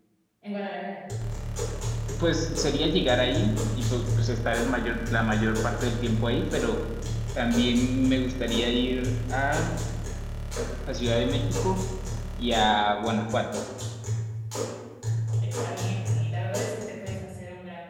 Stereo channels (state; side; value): identical; both; correlation 1.00